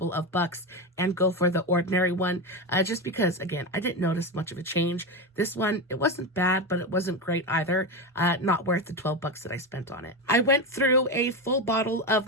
of bucks and go for the ordinary one, just because, again, I didn't notice much of a change. This one, it wasn't bad, but it wasn't great either. Not worth the 12 bucks that I spent on it. I went through a full bottle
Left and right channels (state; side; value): normal; both; correlation 0.16